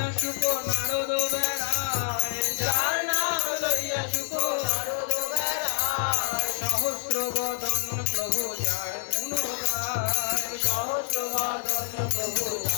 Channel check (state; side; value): silent; right; digital silence